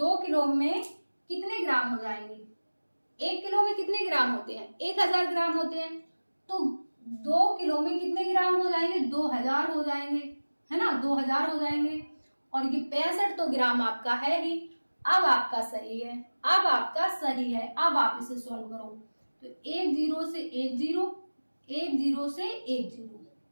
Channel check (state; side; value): inverted; both; correlation -1.00